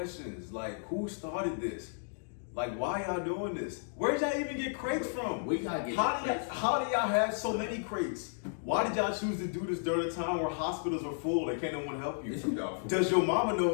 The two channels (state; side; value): silent; right; digital silence